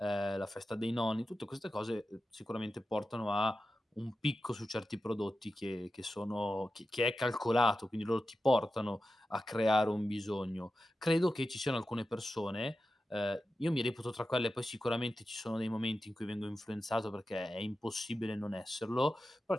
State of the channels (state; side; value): normal; both; correlation 0.92